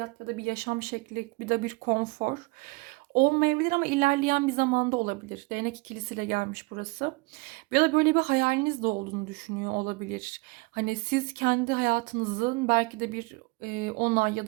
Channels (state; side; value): quieter; left; 26.4 dB